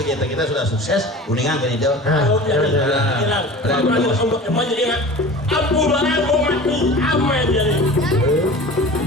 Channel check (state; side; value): normal; both; correlation 0.37